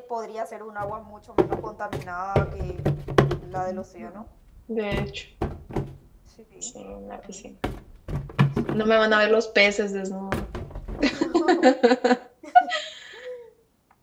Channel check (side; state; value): both; identical; correlation 1.00